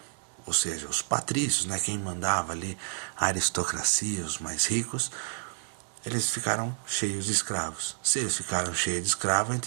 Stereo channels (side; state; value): left; silent; digital silence